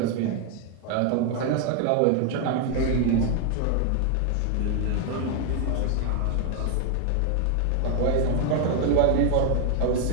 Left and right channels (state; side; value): different; both; correlation 0.00